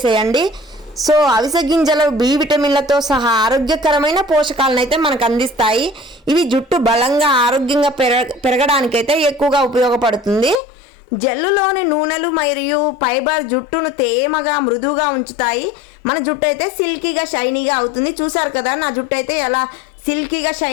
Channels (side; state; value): right; drops out; at 10.6 s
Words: సో అవిసె గింజలు బి విటమిన్లతో సహా ఆరోగ్యకరమైన పోషకాలను అయితే మనకు అందిస్తాయి. ఇవి జుట్టు బలంగా ఆరోగ్యంగా పెరగడానికైతే ఎక్కువగా ఉపయోగపడుతుంది. జెల్లులోని నూనెలు మరియు ఫైబర్ జుట్టును తేమగా మృదువుగా ఉంచుతాయి. మన జుట్టు అయితే సిల్కీగా షైనీగా అవుతుంది. చూసారు కదా నా జుట్టు అయితే ఎలా సిల్కీగా